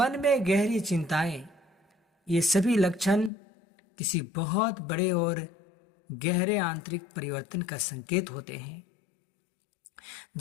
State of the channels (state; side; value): drops out; right; at 3.3 s